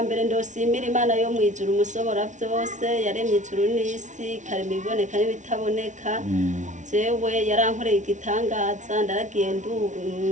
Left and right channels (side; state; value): left; late; 0.36 ms